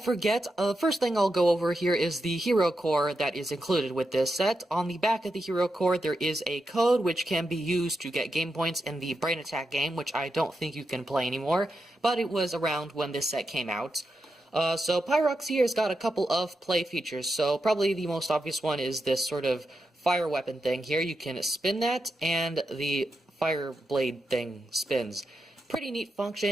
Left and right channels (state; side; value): normal; both; correlation 0.87